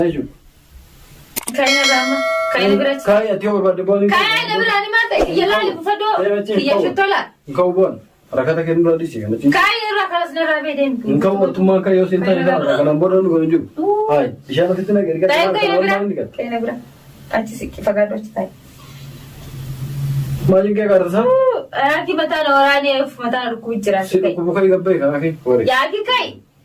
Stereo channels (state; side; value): identical; both; correlation 1.00